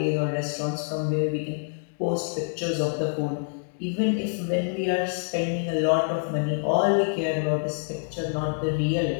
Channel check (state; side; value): silent; right; digital silence